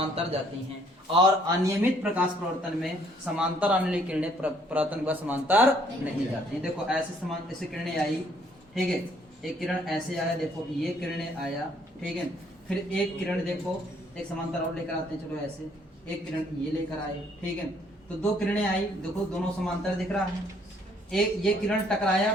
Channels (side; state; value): both; normal; correlation 0.64